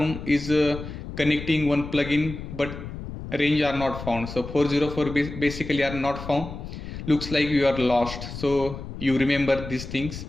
is connecting one plugin but range are not found. So 404 basically are not found. Looks like you are lost. So you remember these things.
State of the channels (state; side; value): noise; left; rumble, 10 dB below the sound